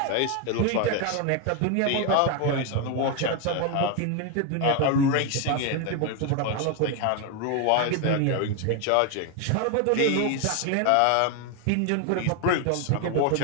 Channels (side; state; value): both; different; correlation 0.01